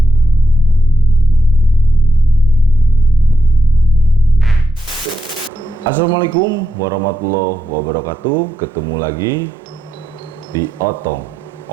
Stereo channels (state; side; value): normal; both; correlation 0.84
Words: Assalamualaikum warahmatullahi wabarakatuh. Ketemu lagi di Otong,